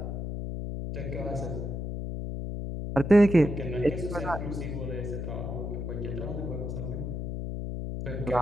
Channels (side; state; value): left; noise; hum, 4 dB below the sound